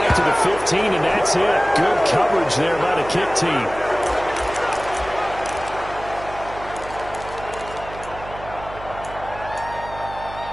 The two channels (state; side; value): noise; right; hum, 14 dB below the sound